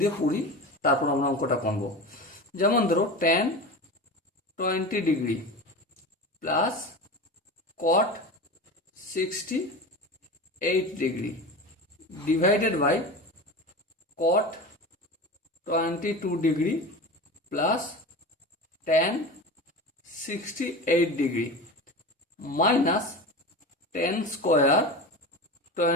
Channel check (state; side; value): normal; both; correlation 0.29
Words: দিয়ে পড়ি, তারপর আমরা অঙ্কটা করবো। যেমন ধরো tan 20 degree plus cot 68 degree divided by cot 22 degree plus tan 68 degree minus tan square